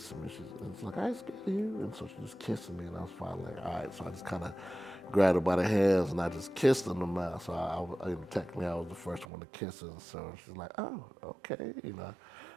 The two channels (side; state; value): left; drops out; at 9.2 s